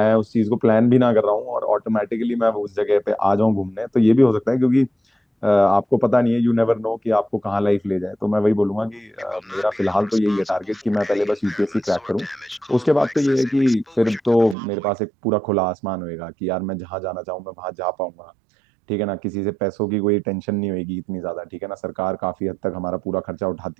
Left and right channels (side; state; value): left; drops out; at 14.6 s